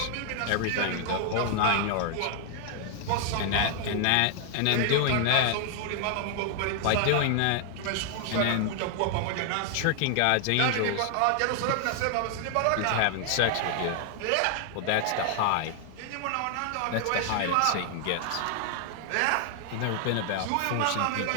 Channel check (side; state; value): both; different; correlation 0.00